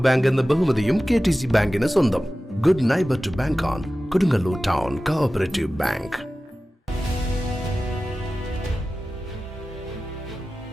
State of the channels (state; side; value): normal; both; correlation 0.96